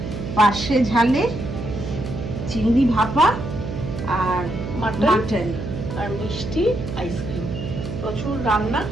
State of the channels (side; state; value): right; noise; hum, 6 dB below the sound